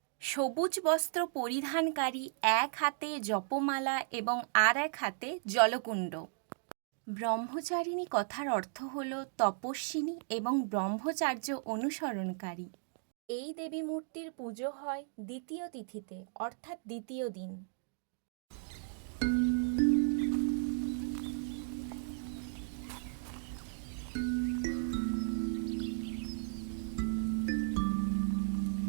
সবুজ বস্ত্র পরিধানকারী, এক হাতে জপমালা এবং আর এক হাতে জলকুণ্ড। ব্রহ্মচারিণী কথার অর্থ হল তপস্বিনী এবং ব্রহ্মচার্য অনুসরণকারী। এই দেবী মূর্তির পুজো হয় দ্বিতীয় তিথিতে, অর্থাৎ দ্বিতীয় দিন।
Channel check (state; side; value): silent; left; digital silence